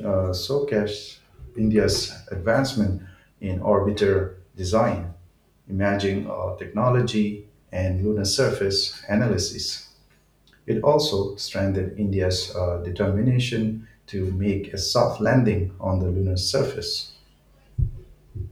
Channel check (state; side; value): identical; both; correlation 1.00